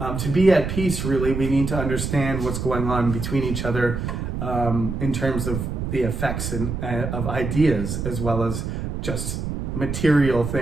To be at peace, really, we need to understand what's going on between each other in terms of the effects of ideas, as well as just material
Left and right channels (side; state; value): right; noise; rumble, 4 dB below the sound